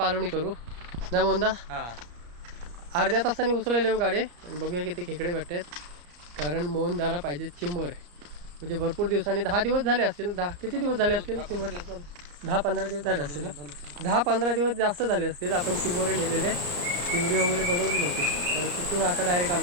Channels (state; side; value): late; left; 34 ms